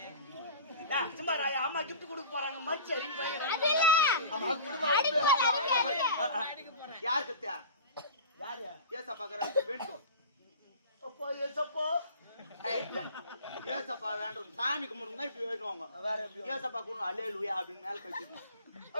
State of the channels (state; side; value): inverted; both; correlation -0.37